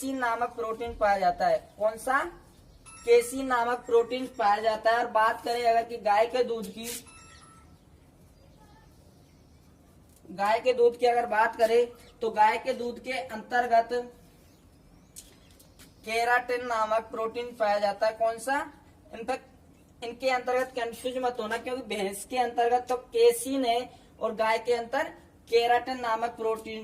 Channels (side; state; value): both; identical; correlation 1.00